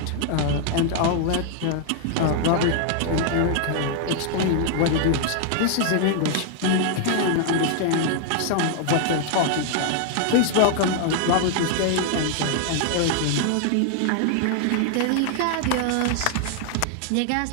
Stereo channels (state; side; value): different; both; correlation 0.00